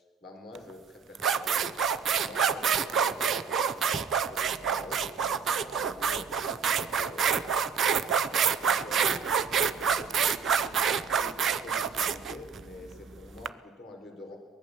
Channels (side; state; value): left; quieter; 6.4 dB